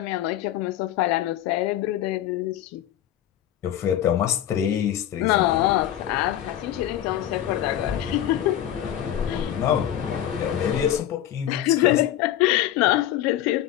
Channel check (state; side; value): quieter; right; 11.9 dB